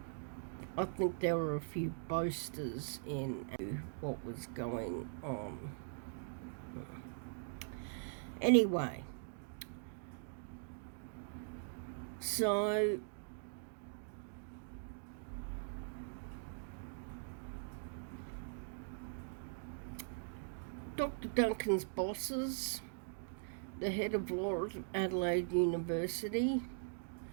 I think there were a few boasters in what was going on. Anyway, so Dr. Duncan's bosses, the head of law at Adelaide University,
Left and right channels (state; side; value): silent; left; digital silence